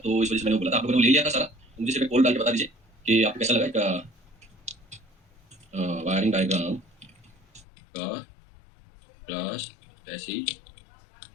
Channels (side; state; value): right; drops out; at 7.7 s